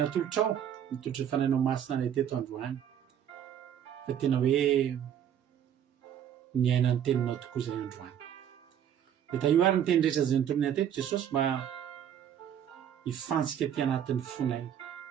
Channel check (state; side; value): quieter; left; 9.4 dB